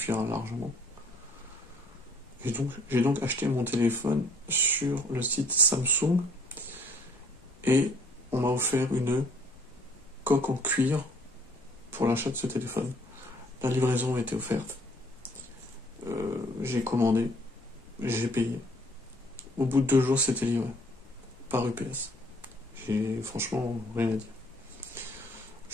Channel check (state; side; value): normal; both; correlation 0.59